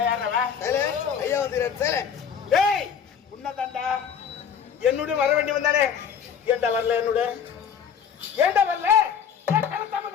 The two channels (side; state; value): right; quieter; 7.5 dB